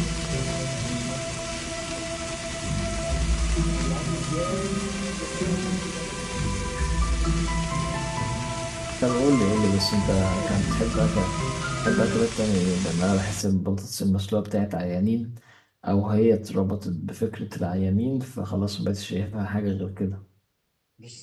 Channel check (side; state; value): both; identical; correlation 1.00